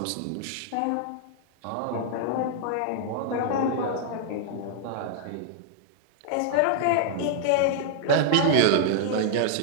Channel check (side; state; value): both; different; correlation -0.01